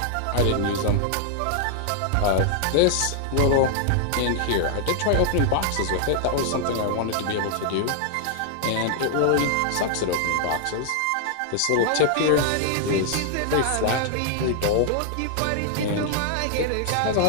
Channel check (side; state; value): both; different; correlation 0.00